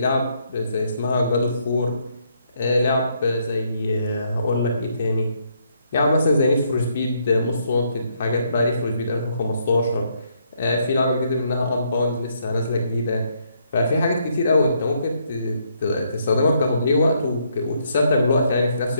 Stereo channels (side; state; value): both; inverted; correlation -0.73